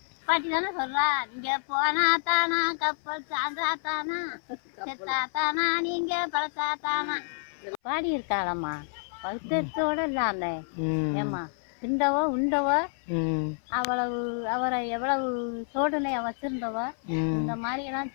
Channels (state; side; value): silent; right; 57 dB below the other